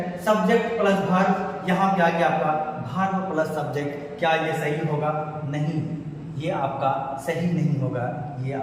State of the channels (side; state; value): both; identical; correlation 1.00